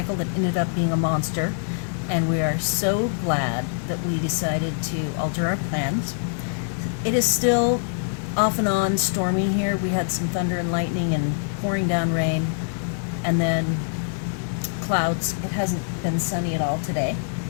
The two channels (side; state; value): right; silent; 60 dB below the other